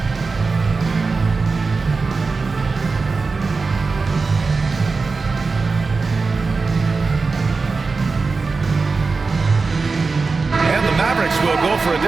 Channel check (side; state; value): left; quieter; 4.3 dB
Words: Will go for a